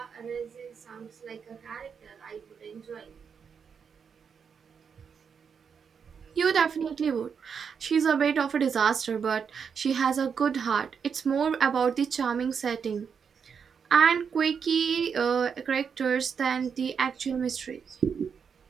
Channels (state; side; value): quieter; left; 6.6 dB